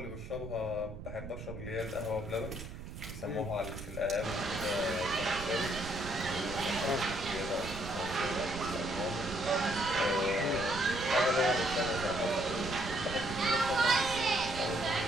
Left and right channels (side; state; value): right; noise; rumble, 10 dB below the sound